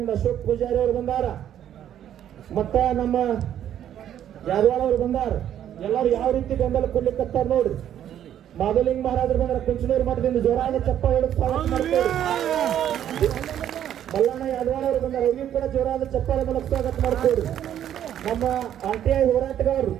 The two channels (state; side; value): quieter; left; 10.6 dB